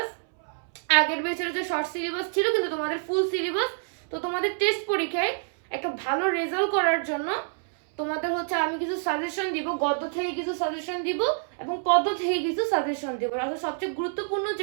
আগের ব্যাচের হচ্ছে শর্ট সিলেবাস ছিল কিন্তু তোমাদের ফুল সিলেবাস। তো তোমাদের টেস্ট পরীক্ষায় একটা ভালো রেজাল্ট করার জন্য তোমাদের হচ্ছে আমি কিছু সাজেশন দিব, গদ্য থেকে কিছু সাজেশন দিব এবং পদ্য থেকে কিছু সাজেশন দিব। আসলে সবচেয়ে গুরুত্বপূর্ণ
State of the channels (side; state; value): left; silent; 60 dB below the other